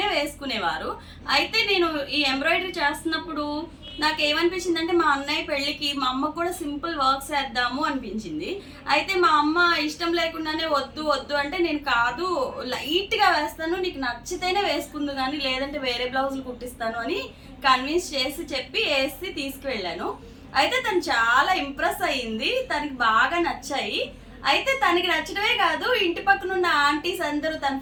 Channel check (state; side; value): identical; both; correlation 1.00